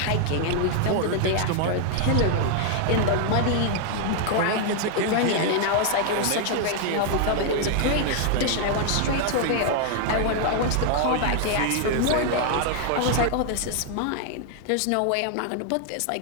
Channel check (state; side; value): different; both; correlation 0.00